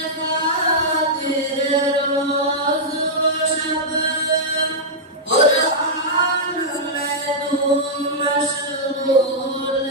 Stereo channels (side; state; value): both; normal; correlation -0.09